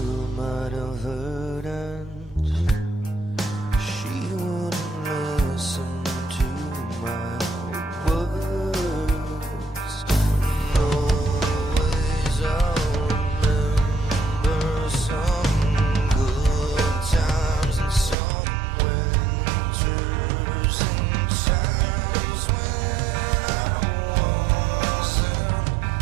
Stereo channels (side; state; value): left; drops out; at 18.2 s